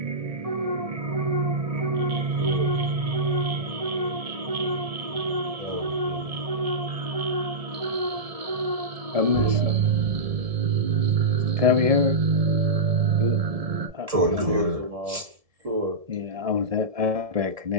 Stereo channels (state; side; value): late; left; 1.7 ms